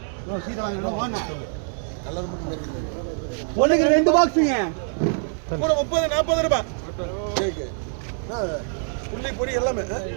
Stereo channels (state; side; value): silent; left; digital silence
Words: சீட்டை வாங்கினா ஒன்றுக்கு 2 பாக்ஸுங்க. கூட 30 40 ரூபா. புள்ளி பொடி எல்லாமே.